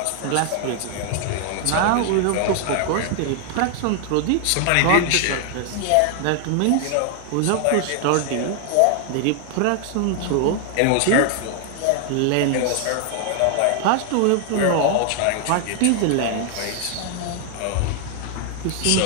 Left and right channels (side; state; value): both; different; correlation 0.00